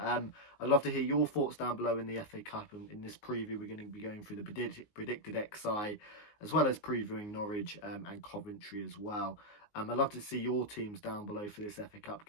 love to hear your thoughts down below in the FA Cup, and in this preview we're going to be going through the predicted XI as well as previewing Norwich and Coventry as well. I'd love to see your teams down below for this FA Cup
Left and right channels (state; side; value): late; right; 19 ms